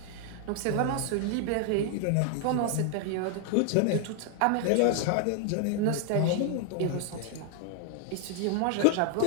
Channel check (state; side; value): different; both; correlation 0.00